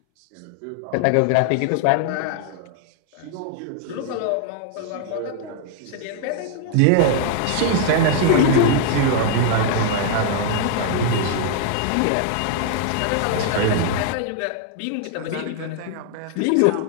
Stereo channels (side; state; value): both; different; correlation 0.00